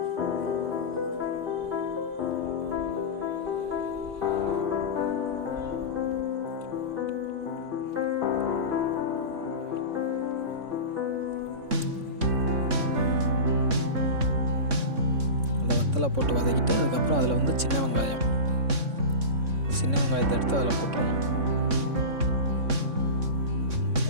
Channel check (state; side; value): late; left; 3.6 ms